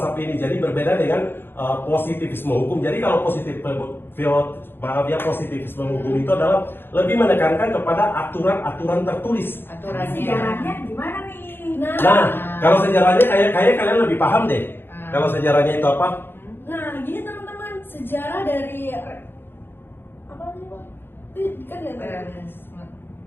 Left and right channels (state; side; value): late; right; 0.10 ms